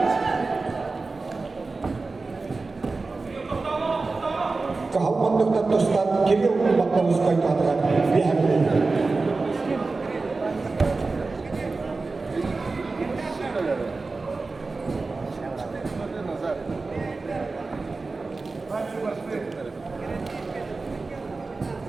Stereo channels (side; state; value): left; quieter; 3.8 dB